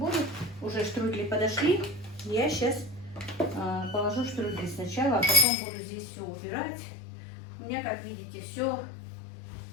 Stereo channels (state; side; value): drops out; right; at 5.5 s